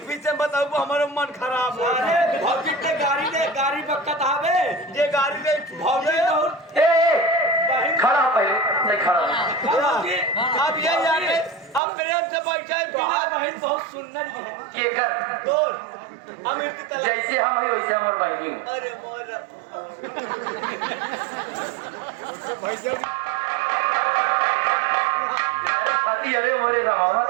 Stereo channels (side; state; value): left; drops out; at 11.8 s